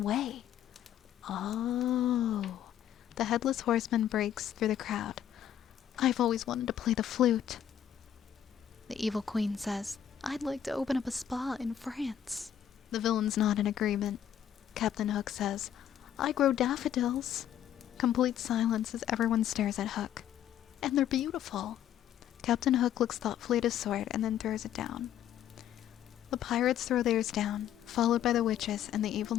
way. Oh. The headless horseman breaks through the crowd. I've always wanted to play the flute. The evil queen says, I'd like to open up a spa in France. The villains nod in agreement. Captain Hook says, I grow daffodils. Complete silence as everyone stares at Hook. And they're beautiful. Captain Hook looks thoughtfully at his sword and then throws it down. The pirates throw theirs down, followed by the witches and the evil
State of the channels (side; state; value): right; quieter; 10.2 dB